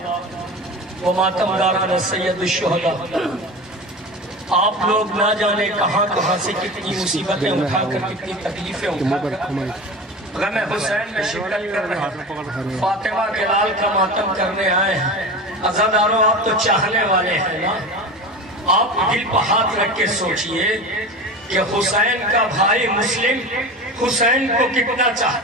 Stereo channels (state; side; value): normal; both; correlation 0.30